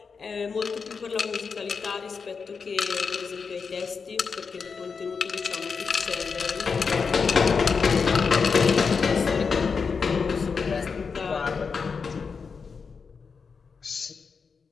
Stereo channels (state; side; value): quieter; right; 5.4 dB